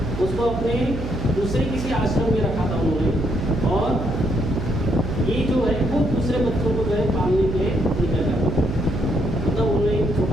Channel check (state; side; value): noise; right; hum, 6 dB below the sound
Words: उसको अपने दूसरे किसी आश्रम में रखा था उन्होंने, और ये जो है खुद दूसरे बच्चों को जो है पालने के लिए निकल जाता था। मतलब उन्होंने एक